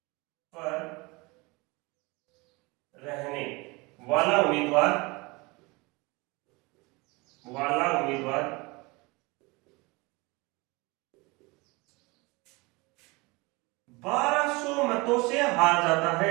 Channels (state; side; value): quieter; left; 25.4 dB